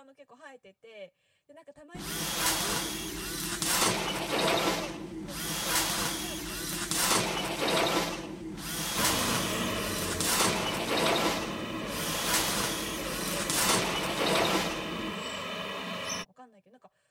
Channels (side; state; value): both; identical; correlation 1.00